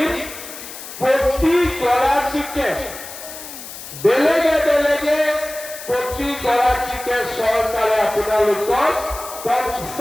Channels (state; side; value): noise; left; hiss, 12 dB below the sound